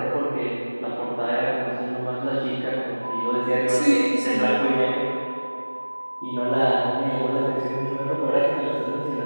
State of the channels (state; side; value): inverted; both; correlation -1.00